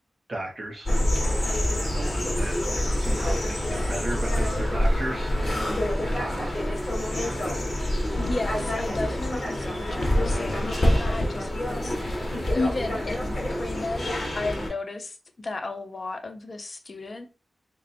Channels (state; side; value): normal; both; correlation 0.96